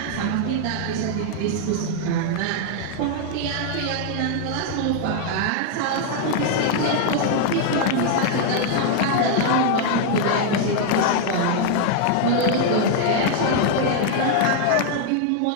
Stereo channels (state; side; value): different; both; correlation 0.00